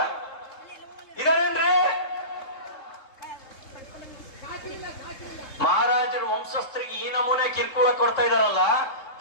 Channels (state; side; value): late; right; 3.7 ms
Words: ಇದಾರೇನ್ರಿ? ಮಹಾರಾಜರ ವಂಶಸ್ಥರಿಗೆ ಈ ನಮೂನೆ ಕಿರ್ಕುಳ ಕೊಡ್ತಾ ಇದಾರಲ್ಲ,